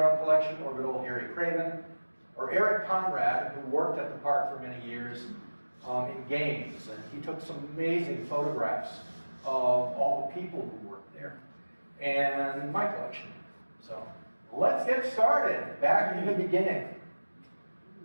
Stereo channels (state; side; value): inverted; both; correlation -1.00